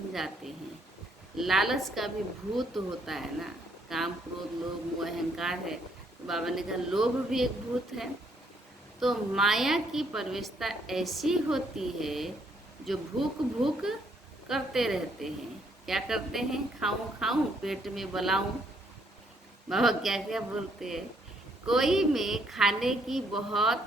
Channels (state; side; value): normal; both; correlation 0.70